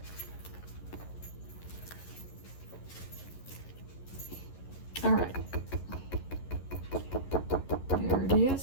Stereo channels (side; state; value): right; late; 11 ms